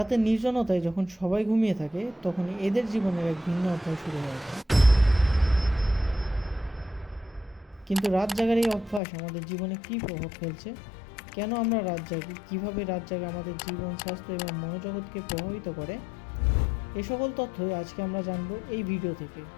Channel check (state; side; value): drops out; right; at 9.0 s